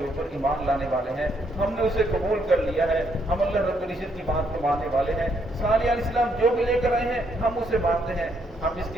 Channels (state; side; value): normal; both; correlation 0.73